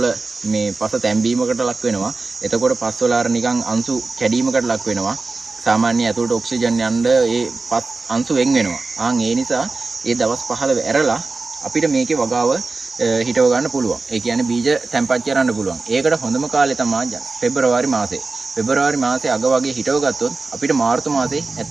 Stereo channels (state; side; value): quieter; left; 3.8 dB